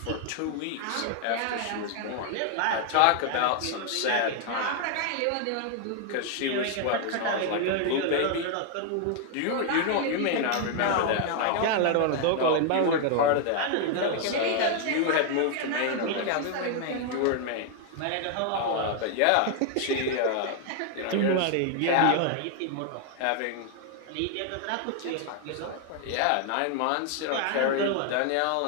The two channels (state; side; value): different; both; correlation 0.00